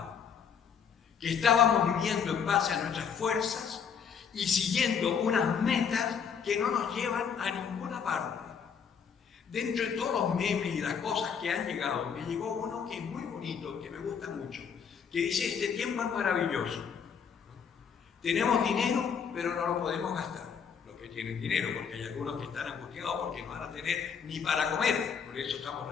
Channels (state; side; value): quieter; right; 7.0 dB